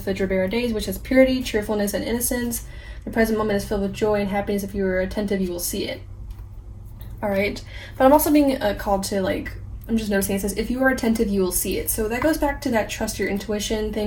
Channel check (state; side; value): identical; both; correlation 1.00